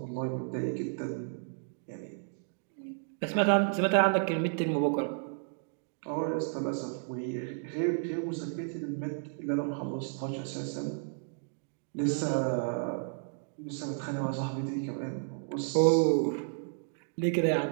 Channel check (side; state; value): left; silent; digital silence